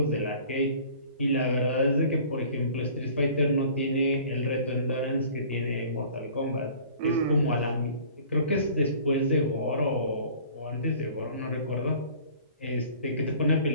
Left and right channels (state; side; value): inverted; both; correlation -0.48